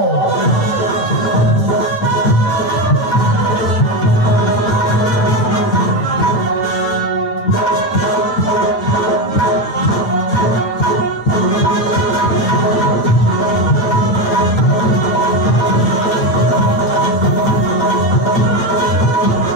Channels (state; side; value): late; right; 9.1 ms